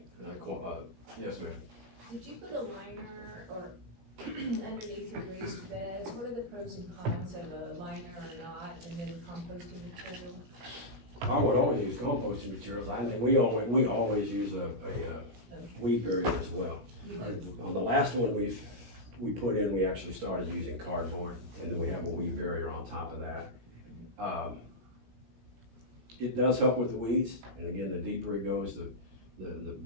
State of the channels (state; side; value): late; left; 17 ms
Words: Yes, ma'am. Did you put a liner or underneath your raised beds? What are the pros and cons of a liner or not, and then composting material? I would always use composting materials. We always use a weed barrier as well. On the last one we put in, we actually started using cardboard, and then we have a weed barrier on top of that. It does help with the weeds, and again, the deeper it goes, the